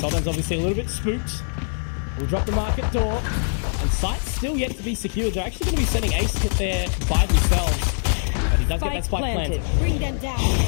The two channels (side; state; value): right; silent; 63 dB below the other